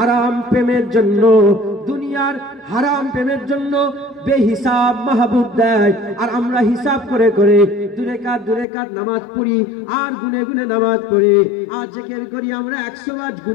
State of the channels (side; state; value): right; drops out; at 8.7 s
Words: প্রেমের জন্য বেহিসাব মাহবুব দেয়, আর আমরা হিসাব করে দূরে কাত নামাজ পড়ি, আর গুনে নামাজ পড়ি, আর জিকির করি আমরা 100 বার